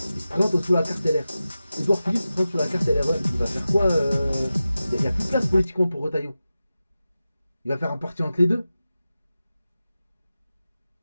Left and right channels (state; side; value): inverted; both; correlation -0.94